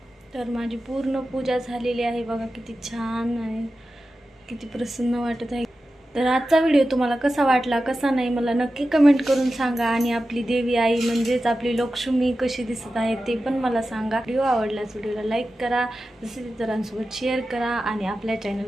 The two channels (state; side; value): normal; both; correlation 0.93